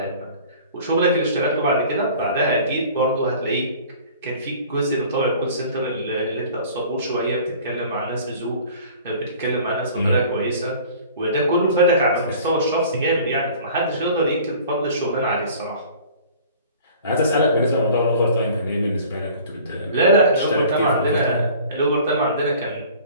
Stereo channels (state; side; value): inverted; both; correlation -0.47